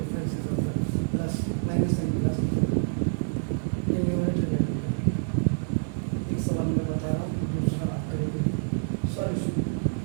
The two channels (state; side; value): silent; left; 60 dB below the other